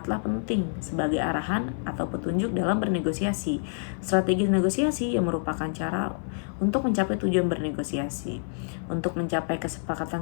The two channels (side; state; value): right; silent; 56 dB below the other